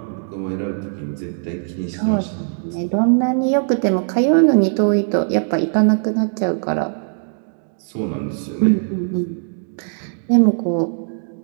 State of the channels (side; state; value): left; silent; digital silence